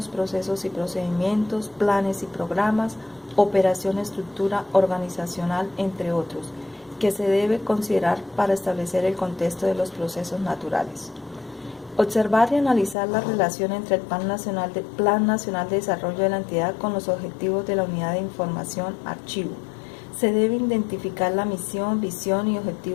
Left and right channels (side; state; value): right; drops out; at 13.0 s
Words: procesos y procedimientos, planes y programas, operación, estructura organizacional, entre otros, que se debe considerar para establecer el contexto de los procesos naturales. Observar y analizar la relación entre el Plan Nacional de Desarrollo de la entidad con los objetivos de la Unidad de Información Archivo. Se debe identificar la misión, visión y